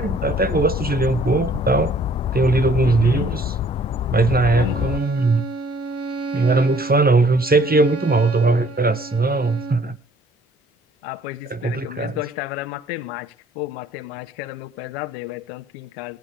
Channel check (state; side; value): normal; both; correlation 0.58